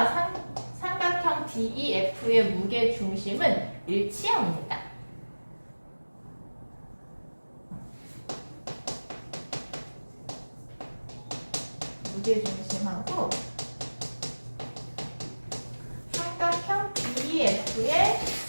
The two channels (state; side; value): inverted; both; correlation -1.00